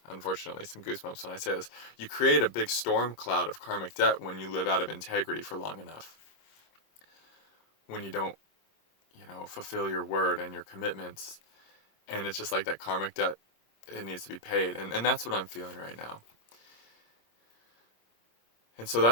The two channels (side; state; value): right; late; 26 ms